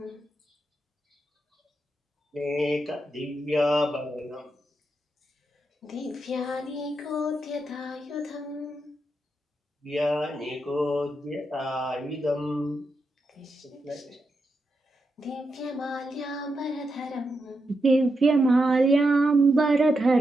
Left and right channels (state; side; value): normal; both; correlation 0.85